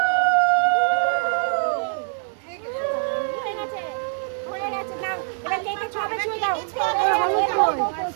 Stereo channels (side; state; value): left; silent; 63 dB below the other